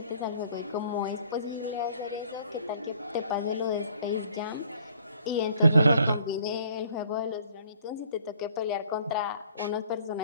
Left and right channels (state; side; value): inverted; both; correlation -0.59